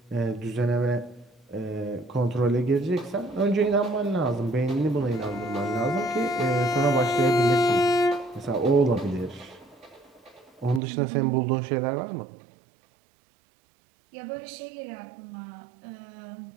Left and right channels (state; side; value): drops out; left; at 10.8 s